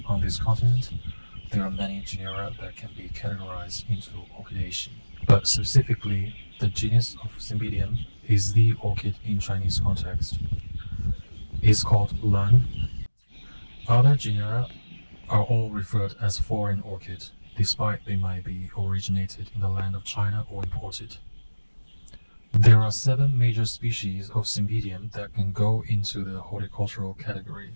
on this continent, there are many genera that can be categorized into Orchidaceae. But specifically, the genus of Cymbidium is the orchid in Chinese context. It's called Lan. Other genera are all referred as foreign orchid, despite they might be originated in the land of China or imported. There are 7 major species of Cymbidium that can go into the horticultural category,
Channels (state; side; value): inverted; both; correlation -1.00